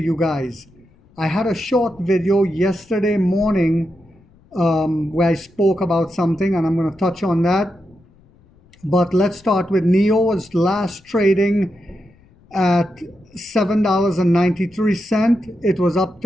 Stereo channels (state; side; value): noise; left; rumble, 30 dB below the sound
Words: guys. I had a short video yesterday morning where I spoke about something, and I'm going to touch on that. But let's start with NIO was last trading at $7.93. It was up